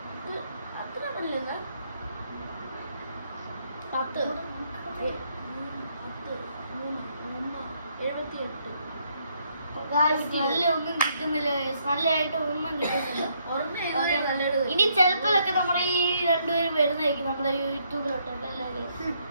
അത്ര നല്ലത് 10, 78. നല്ല ഒന്നും കിട്ടുന്നില്ല, നല്ലതായിട്ട് ഒന്നും കിട്ടുന്നില്ല. ഇനി ചിലപ്പോഴൊക്കെ നമ്മുടെ ഈ രണ്ടുപേരും വരുന്നതായിരിക്കും നമ്മുടെ യൂട്യൂബിലോട്ടല്ലേ.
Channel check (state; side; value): inverted; both; correlation -0.72